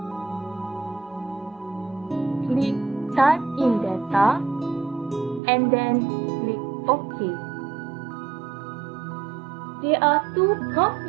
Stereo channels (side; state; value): left; drops out; at 5.4 s